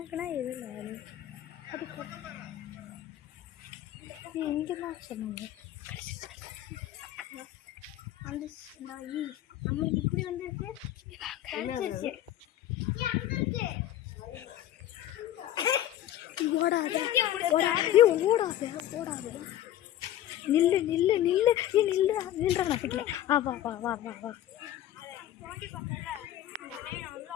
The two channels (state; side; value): quieter; right; 12.6 dB